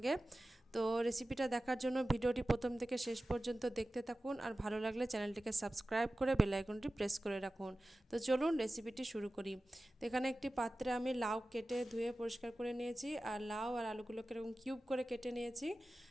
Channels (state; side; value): normal; both; correlation 0.95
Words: তো রেসিপিটা দেখার জন্য ভিডিওটি প্রথম থেকে শেষ পর্যন্ত দেখতে থাকুন, আর ভালো লাগলে চ্যানেলটিকে সাবস্ক্রাইব করে বেল আইকনটি প্রেস করে রাখুন। তো চলুন রেসিপিটি শুরু করি। তো এখানে একটি পাত্রে আমি লাউ কেটে ধুয়ে পরিষ্কার করে নিয়েছি, আর লাউ আর আলুগুলোকে এরকম কিউব করে কেটে নিয়েছি।